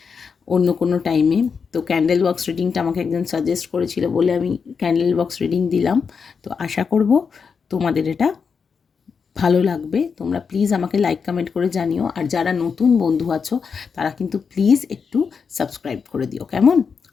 অন্য কোনো টাইমে। তো ক্যান্ডেল বক্স রিডিংটা আমাকে একজন সাজেস্ট করেছিল বলে আমি ক্যান্ডেল বক্স রিডিং দিলাম। তো আশা করব তোমাদের এটা ভালো লাগবে। তোমরা প্লিজ আমাকে লাইক কমেন্ট করে জানিও, আর যারা নতুন বন্ধু আছো তারা কিন্তু প্লিজ একটু সাবস্ক্রাইব করে দিও, কেমন?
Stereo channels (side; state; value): right; quieter; 5.9 dB